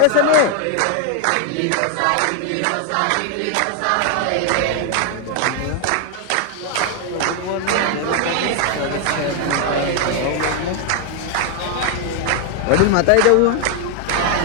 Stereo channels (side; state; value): both; different; correlation 0.00